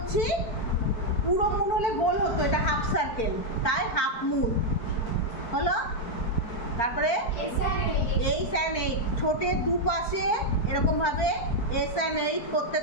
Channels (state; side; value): late; right; 4.4 ms